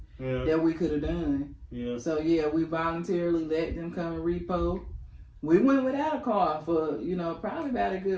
that we could have done. Yeah. So yeah, we voluntarily let them come and repo. We went without a car for, you know, probably about a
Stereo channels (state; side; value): identical; both; correlation 1.00